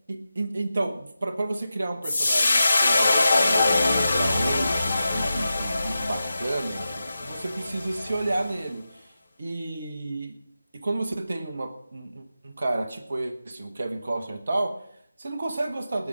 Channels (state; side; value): inverted; both; correlation -0.91